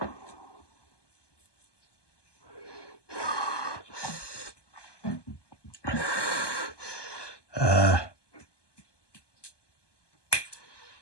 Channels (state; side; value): late; right; 1.2 ms